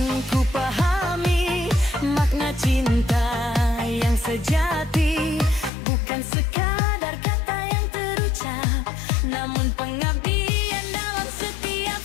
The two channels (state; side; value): drops out; right; at 5.7 s